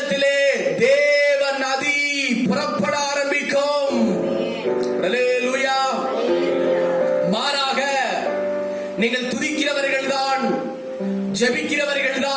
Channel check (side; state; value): both; identical; correlation 1.00